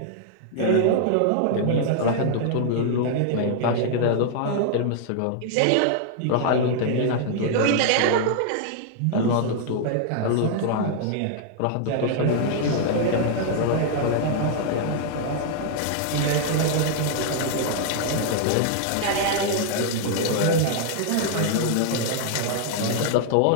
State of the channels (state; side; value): different; both; correlation -0.01